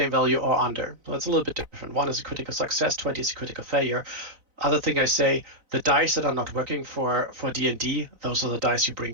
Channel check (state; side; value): late; left; 4.0 ms